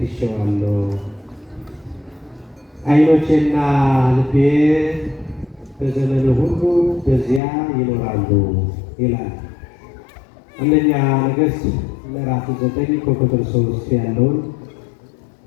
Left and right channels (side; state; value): right; drops out; at 7.4 s